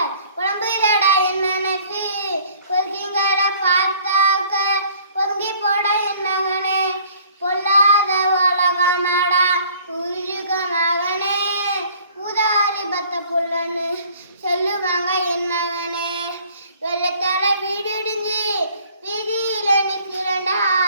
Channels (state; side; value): inverted; both; correlation -0.54